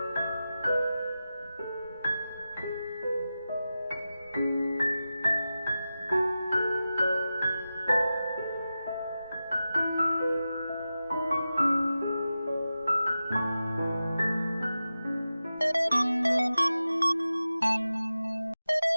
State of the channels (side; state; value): both; inverted; correlation -0.93